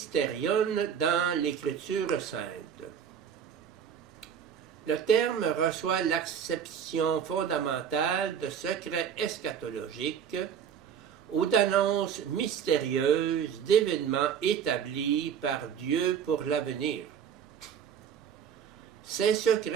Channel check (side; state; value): left; quieter; 8.1 dB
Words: dans l'Écriture sainte. Le terme reçoit l'acception fondamentale de secret eschatologique ou d'annonces mystérieuses d'événements établis par Dieu pour l'avenir. Ces